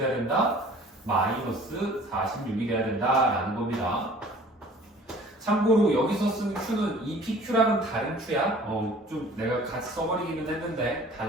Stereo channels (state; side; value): normal; both; correlation 0.49